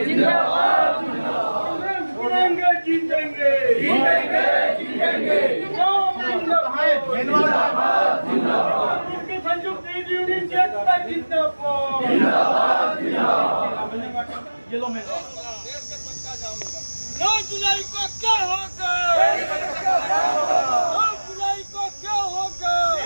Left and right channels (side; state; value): both; inverted; correlation -1.00